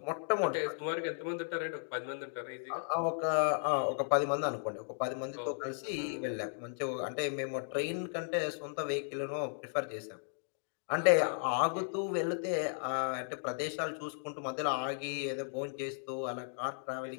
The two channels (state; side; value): silent; right; digital silence